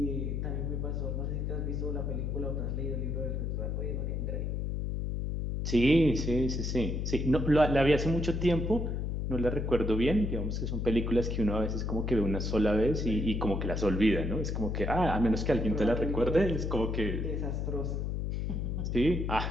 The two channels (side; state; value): left; noise; hum, 1 dB below the sound